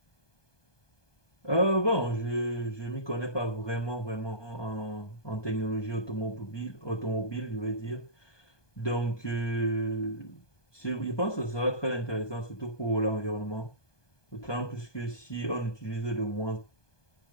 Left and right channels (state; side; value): late; right; 1.2 ms